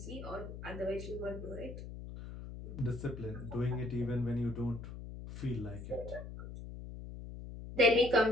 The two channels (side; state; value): left; noise; hum, 10 dB below the sound